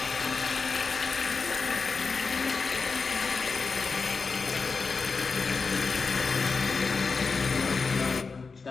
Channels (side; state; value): right; quieter; 4.6 dB